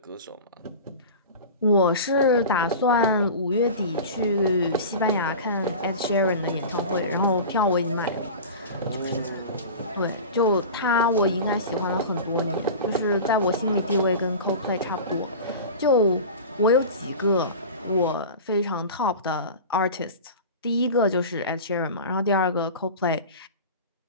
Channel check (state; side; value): inverted; both; correlation -0.33